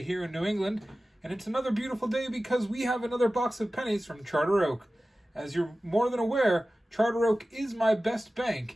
here in New England. And it's another beautiful day because we have another box of pennies from Charter Oak. As you're more than aware, Charter Oak is my best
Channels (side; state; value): both; normal; correlation 0.96